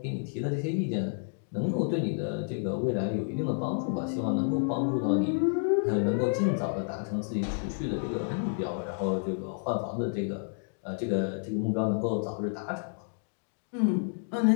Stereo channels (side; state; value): right; silent; digital silence